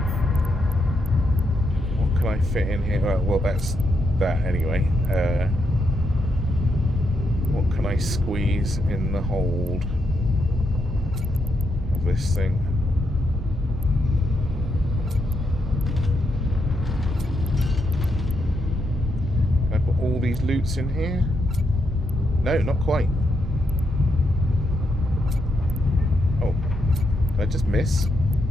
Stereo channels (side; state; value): both; normal; correlation 0.80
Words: I fit in here? Well, that's that anyway. What can I squeeze in the hold of this thing? Can I put all these loots in here? No, not quite. Oh, did I just miss?